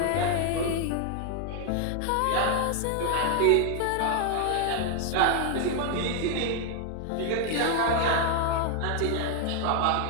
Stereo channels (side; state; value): both; different; correlation 0.00